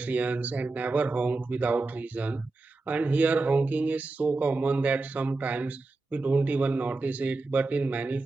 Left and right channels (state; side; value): quieter; left; 3.4 dB